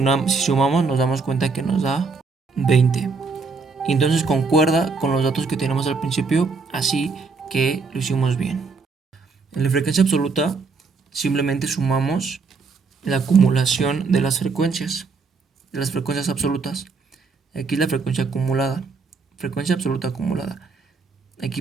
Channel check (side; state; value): left; quieter; 4.4 dB